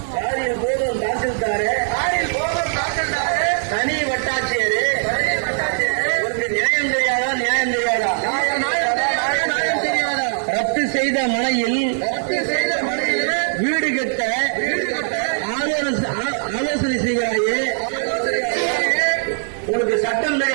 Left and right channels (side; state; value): left; silent; digital silence